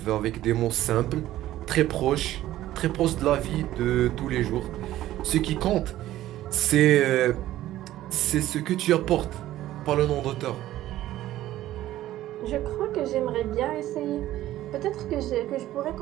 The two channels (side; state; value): left; quieter; 14.2 dB